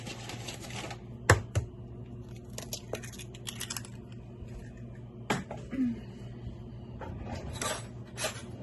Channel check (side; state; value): both; identical; correlation 1.00